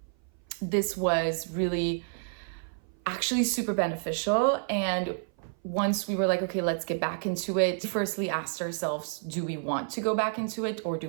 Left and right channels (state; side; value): silent; left; 56 dB below the other